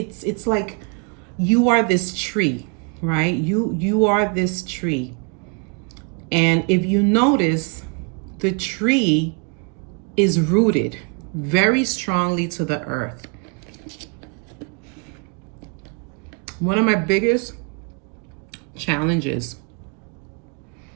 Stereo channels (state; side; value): quieter; left; 34.1 dB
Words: like you are this tree, right? You are this tree. And if you notice, the tree is rooted very strongly to the earth. One of my biggest challenges